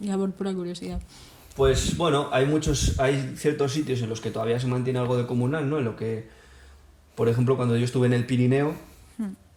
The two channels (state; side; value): identical; both; correlation 1.00